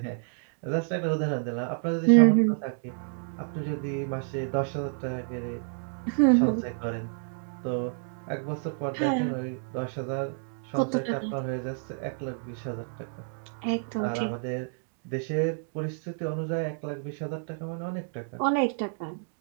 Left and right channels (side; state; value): left; silent; 58 dB below the other